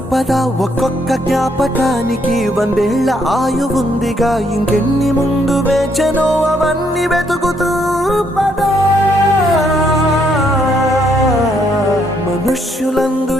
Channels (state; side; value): normal; both; correlation 0.72